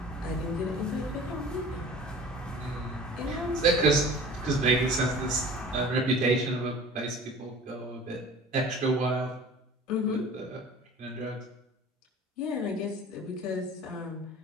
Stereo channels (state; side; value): normal; both; correlation 0.43